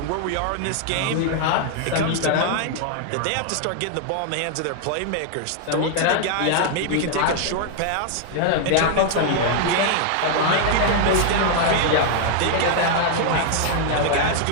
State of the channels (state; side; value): different; both; correlation 0.00